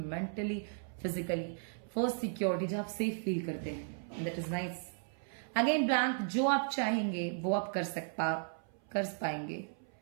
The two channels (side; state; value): left; silent; 54 dB below the other